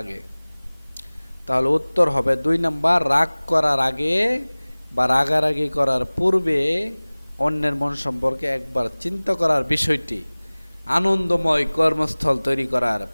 আগে। তাহলে উত্তর হবে 2 নম্বর রাগ করার আগে বা রাগারাগি করার পূর্বে অন্যের মন সম্পর্কে একবার চিন্তা করার বিষয়টি আনন্দময় কর্মস্থল তৈরি করার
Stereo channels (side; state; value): both; inverted; correlation -1.00